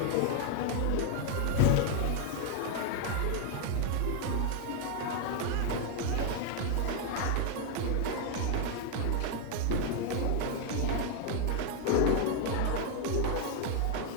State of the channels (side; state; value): both; different; correlation 0.00